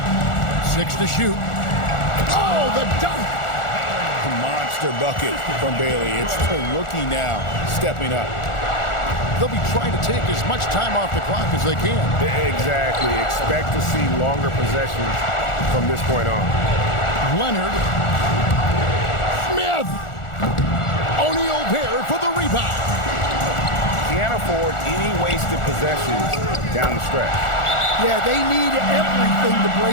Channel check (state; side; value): late; right; 1.4 ms